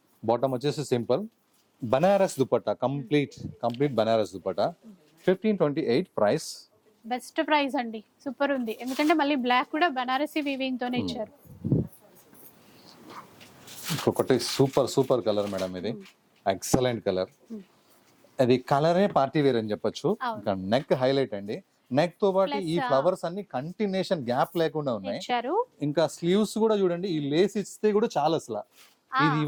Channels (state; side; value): identical; both; correlation 1.00